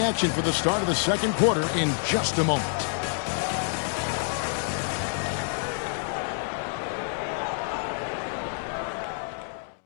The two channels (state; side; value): silent; right; digital silence